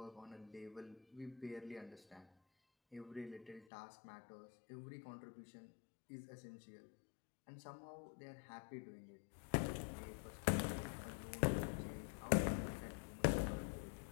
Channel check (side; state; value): right; drops out; at 3.7 s